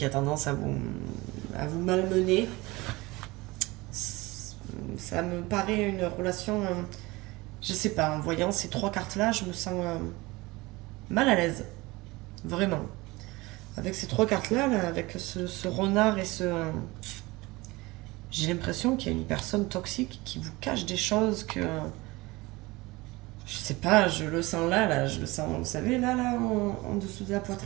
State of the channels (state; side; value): quieter; left; 22.0 dB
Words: a tendance à vous malmener? Ça me paraît une relation... je sais pas, en voyant ces 3 cartes-là, je me sens mal à l'aise. Vraiment. Avec ces 3 cartes-là, là, avec ce renard et ce... j'ai l'impression qu'il y a une personne toxique qui vous cache des choses que... je sais pas, je le sens là, je le sens, vous savez, là, en dessous de la